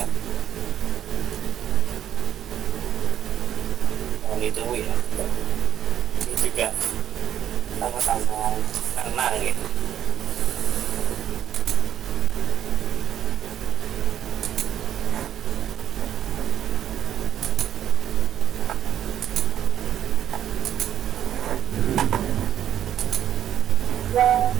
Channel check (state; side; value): quieter; left; 10.5 dB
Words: Yang itu ya, ini juga sama-sama tenang gitu.